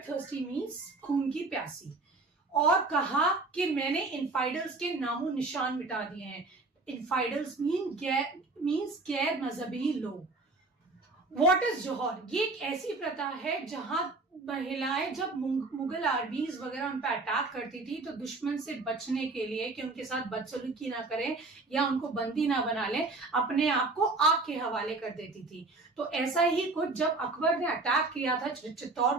थर्स्टी मीन्स खून की प्यासी, और कहा कि मैंने इनफाइडल्स के नामो निशान मिटा दिए हैं। इनफाइडल्स मीन्स गैर मजहबी लोग। व्हाट इज जौहर? ये एक ऐसी प्रथा है जहां महिलाएं जब मुगल आर्मीज वगैरह उन पर अटैक करती थी तो दुश्मन से बचने के लिए कि उनके साथ बदसलूकी ना करें या उनको बंदी ना बना लें, अपने आप को आग के हवाले कर देती थी। तो ऐसा ही कुछ जब अकबर ने अटैक किया था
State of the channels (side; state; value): left; quieter; 3.4 dB